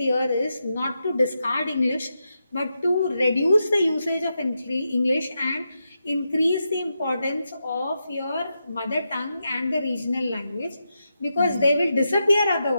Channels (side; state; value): both; inverted; correlation -0.86